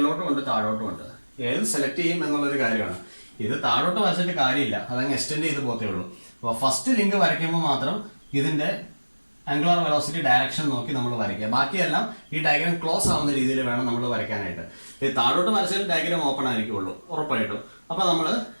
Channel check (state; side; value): inverted; both; correlation -1.00